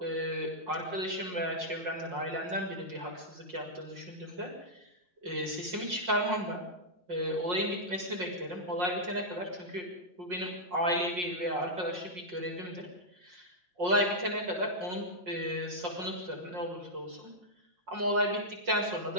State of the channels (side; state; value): left; late; 5.6 ms